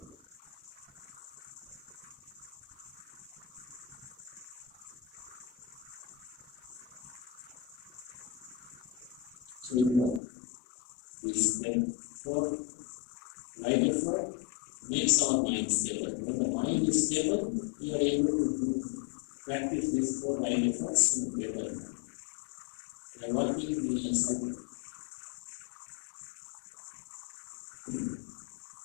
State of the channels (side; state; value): right; drops out; at 10.2 s